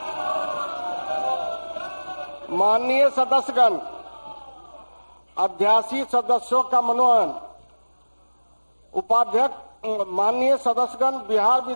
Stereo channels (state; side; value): inverted; both; correlation -1.00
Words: माननीय सदस्यगण, अध्यासी सदस्यों का मनोनयन। उपाध्यक्ष, माननीय सदस्यगण, बिहार